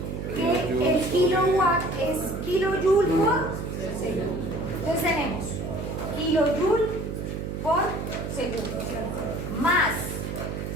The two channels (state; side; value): noise; right; hum, 5 dB below the sound